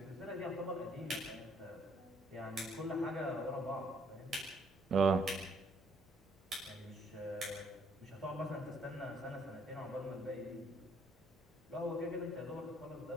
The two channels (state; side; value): normal; both; correlation 0.66